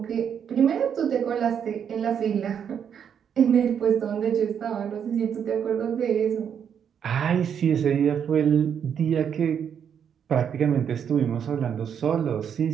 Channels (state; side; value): quieter; left; 8.0 dB